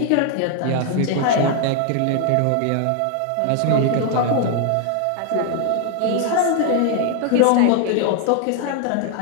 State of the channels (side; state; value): both; different; correlation 0.00